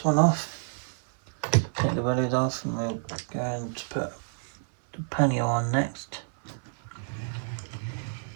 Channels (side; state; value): left; silent; 59 dB below the other